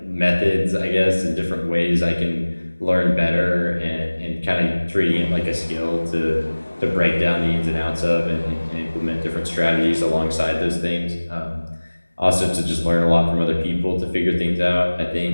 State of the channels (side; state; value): both; inverted; correlation -1.00